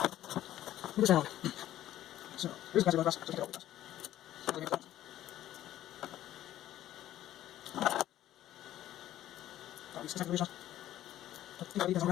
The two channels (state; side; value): quieter; right; 13.1 dB